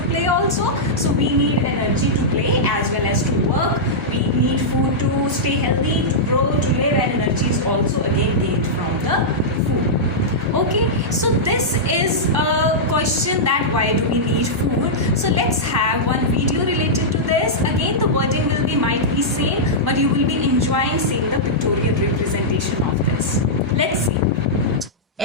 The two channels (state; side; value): normal; both; correlation -0.10